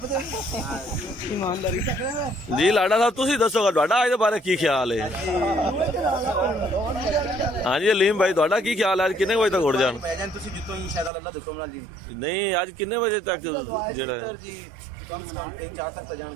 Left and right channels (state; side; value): drops out; left; at 11.1 s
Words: जी लाडा साहब तुसी दसोगा तुहाडा अज दे बारे की ख्याल है? हाँ जी अलीम भाई तुहाडा की ख्याल है? किन्ने बजे तक उड़ जान? नहीं अज किन्ने बजे तक जेड़ा है?